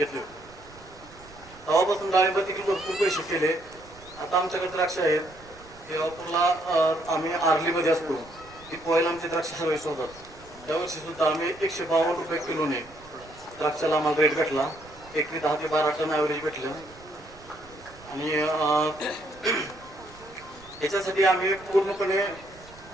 होते. तेव्हापासून डाळिंबात देखील भरपूर पैसे केले. आता आमच्याकडे द्राक्ष आहेत. केळापूरला आम्ही आर्लीमध्ये असतो. ती पोहायला आमचे द्राक्ष सर्विस होतात. त्यावर्षी सुद्धा आम्ही 152 रुपये किलोने द्राक्षाला आम्हाला रेट भेटला. एकरी 10 ते 12 टन ॲव्हरेज भेटलं. आणि याच्यासाठी आम्ही पूर्णपणे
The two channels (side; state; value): right; noise; rumble, 22 dB below the sound